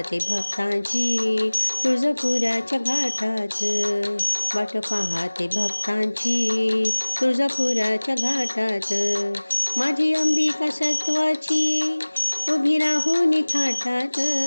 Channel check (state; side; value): inverted; both; correlation -1.00